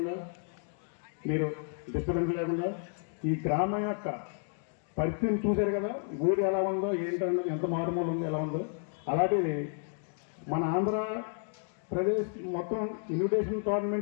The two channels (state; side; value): silent; right; 57 dB below the other